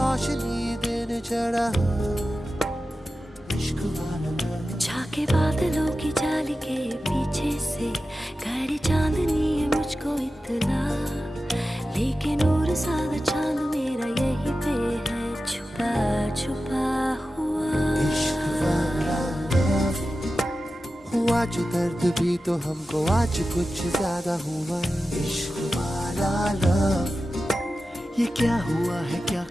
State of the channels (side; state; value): both; normal; correlation 0.93